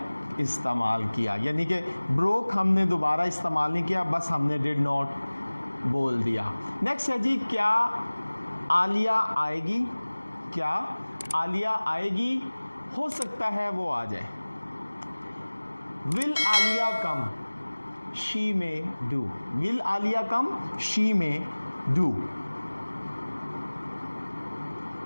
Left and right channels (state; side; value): inverted; both; correlation -1.00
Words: इस्तेमाल किया, यानी कि ब्रोक हमने दोबारा इस्तेमाल नहीं किया, बस हमने डिड नॉट बोल दिया। नेक्स्ट है जी क्या आलिया आएगी, क्या आलिया आएगी, हो सकता है वो आ जाए। Will Alia come, she may do, will Alia come, she may do.